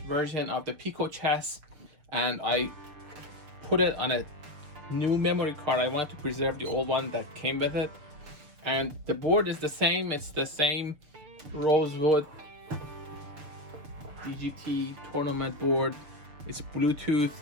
version of the PicoChess and I put it on a new memory card. I wanted to preserve the old one that came with it. And the board is the same, it's the same rosewood DGT tournament board. It's Bluetooth.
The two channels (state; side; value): late; left; 6.8 ms